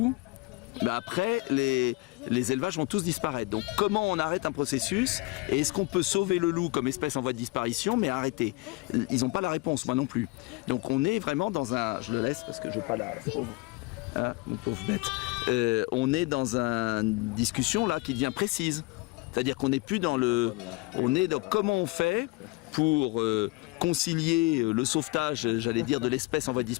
bah après, les élevages vont tous disparaître. Donc comment on arrête un processus? Et est-ce qu'on peut sauver le loup comme espèce en voie de disparition, mais arrêter? Ils n'ont pas la réponse, moi non plus. Donc on est vraiment dans un... Je le laisse parce que je n'ai pas la... Hein, mon pauvre bête. On est dans une discussion là qui devient précise. C'est-à-dire qu'on n'est plus dans le... On est dans comment on fait pour concilier le sauvetage, j'allais dire, de l'espèce en voie de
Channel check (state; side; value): quieter; right; 23.5 dB